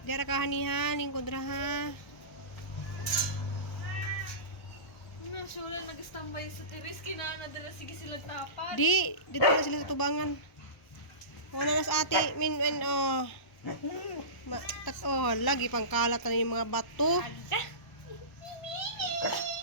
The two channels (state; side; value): late; right; 1.0 ms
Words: Di ra kahani ha, lingkod ra ha. Sure, nag-standby sa teres. Kinanga dala sige sila tapat. Dito na sila sa tubangan. Wala na sa ate, lagi pang kalat na yung mga bato. Ada.